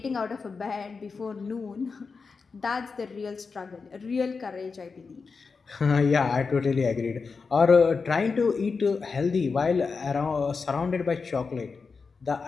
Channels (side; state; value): right; quieter; 4.8 dB